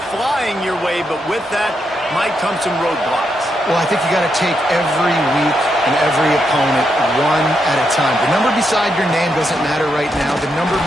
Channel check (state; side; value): normal; both; correlation 0.81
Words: flying your way, but with that might come some roadblocks. Well, I think you got to take every week and every opponent one at a time. The number beside your name doesn't matter right now. The number